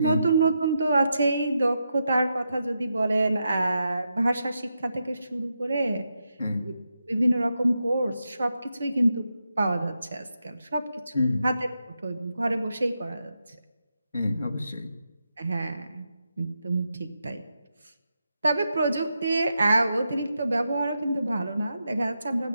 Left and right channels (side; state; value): both; inverted; correlation -0.85